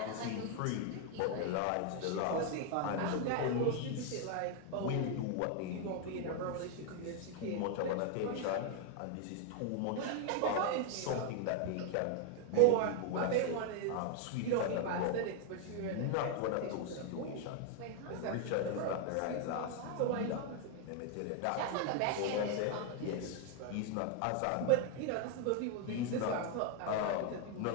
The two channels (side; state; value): both; different; correlation 0.00